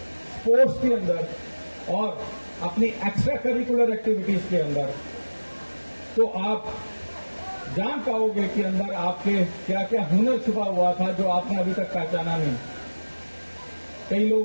स्पोर्ट्स के अंदर और अपनी एक्स्ट्रा करिकुलर एक्टिविटीज के अंदर, तो आप जान पाओगे कि अंदर आपके क्या क्या हुनर छुपा हुआ था जो आपने अभी तक पहचाना नहीं। कई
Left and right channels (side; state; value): both; inverted; correlation -1.00